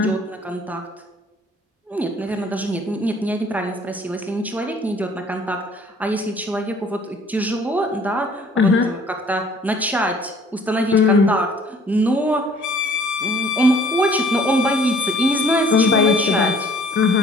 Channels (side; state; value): both; normal; correlation 0.55